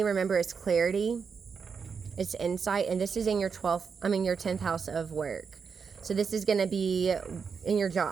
remember, is clarity, it's insight, and this is in your 10th house of work. So this is going to be in your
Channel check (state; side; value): quieter; left; 5.9 dB